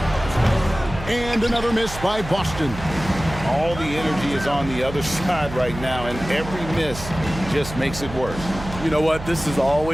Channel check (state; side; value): noise; right; hum, 11 dB below the sound